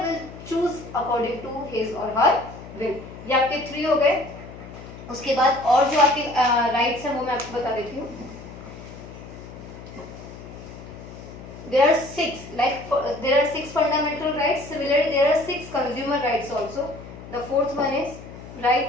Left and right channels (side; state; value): left; noise; hum, 15 dB below the sound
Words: will choose according to his और हर विल। ये आपके 3 हो गए। उसके बाद और जो आपके राइट्स हैं वो मैं आपको बता देती हूँ। There are 6, there are 6 fundamental rights. Similarly, there are 6 consumer rights also. The 4th one is